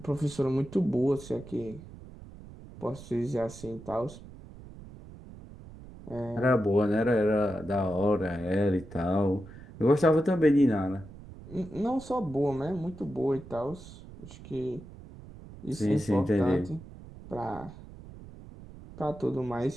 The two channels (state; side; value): noise; right; rumble, 16 dB below the sound